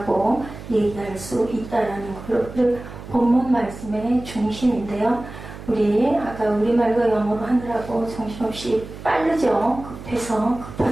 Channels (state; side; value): noise; right; hum, 13 dB below the sound